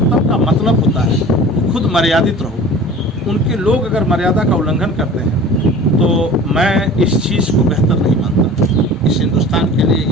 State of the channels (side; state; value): both; normal; correlation 0.41